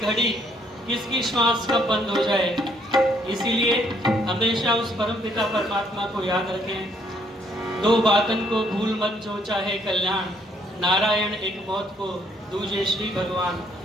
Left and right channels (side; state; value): both; normal; correlation 0.68